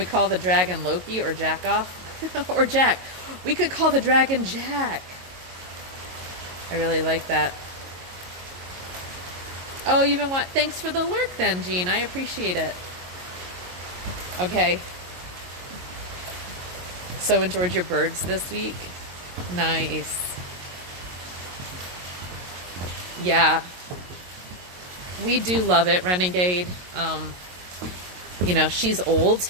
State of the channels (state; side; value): late; left; 22 ms